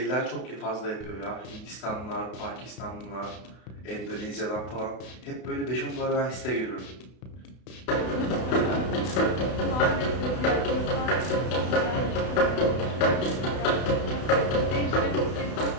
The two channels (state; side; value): late; right; 32 ms